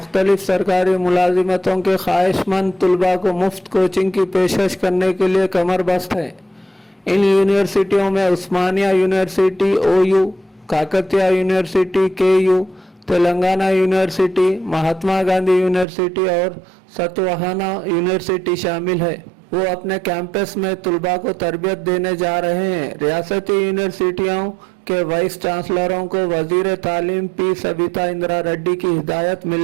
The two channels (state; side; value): drops out; left; at 15.9 s